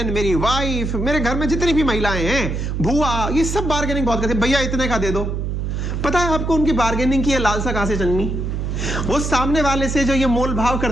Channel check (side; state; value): right; noise; hum, 2 dB below the sound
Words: मेरी वाइफ, मेरे घर में जितनी भी महिलाएं हैं, बुआ, ये सब बार्गेनिंग बहुत करते हैं। भैया इतने का दे दो। पता है आपको उनकी बार्गेनिंग की लालसा कहां से जन्मी? वो सामने वाले से जो ये मोल भाव